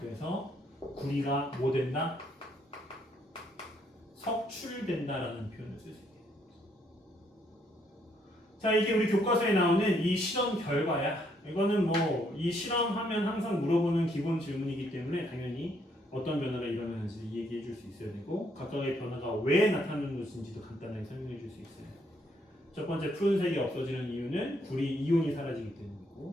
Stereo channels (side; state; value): both; normal; correlation 0.71